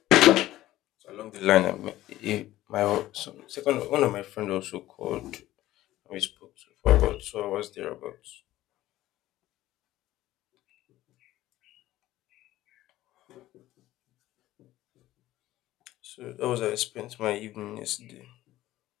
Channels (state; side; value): quieter; right; 15.3 dB